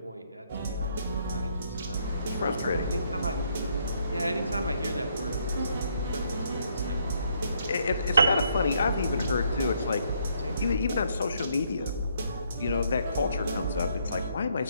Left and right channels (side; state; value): both; inverted; correlation -0.71